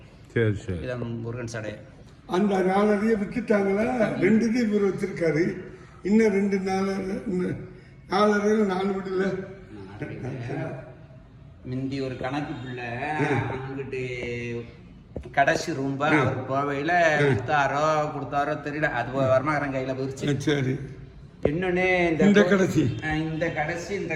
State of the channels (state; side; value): identical; both; correlation 1.00